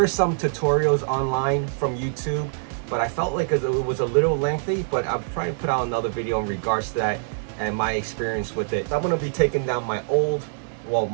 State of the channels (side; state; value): left; silent; 62 dB below the other